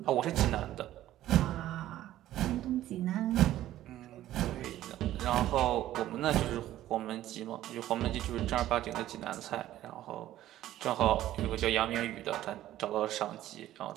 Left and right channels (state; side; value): quieter; left; 13.7 dB